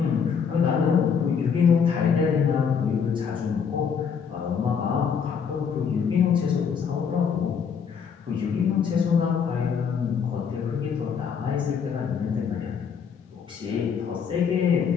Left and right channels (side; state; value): right; quieter; 6.7 dB